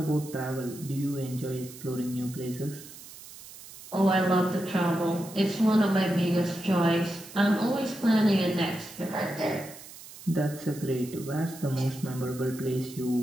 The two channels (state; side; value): noise; right; hiss, 16 dB below the sound